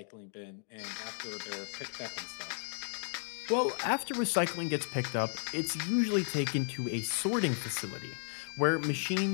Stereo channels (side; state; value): right; silent; 55 dB below the other